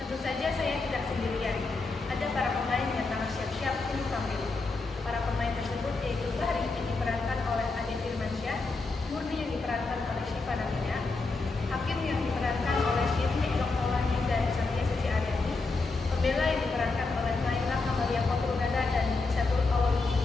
Tentu saja saya tidak sendirian. Ada para pemain yang tengah siap-siap untuk tampil. Para pemain tersebut yaitu Bahri yang diperankan oleh Ade Firmansyah, Murni yang diperankan oleh Syifa Namina, Hakim yang diperankan oleh Syirni Elok Maulani dan Satya Suci Aryani, Pembela yang diperankan oleh Naila Kamalia Kotrunada dan Syatul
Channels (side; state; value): right; quieter; 3.7 dB